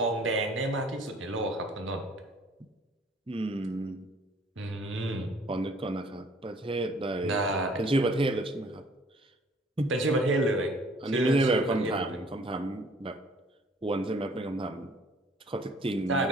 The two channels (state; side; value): normal; both; correlation 0.56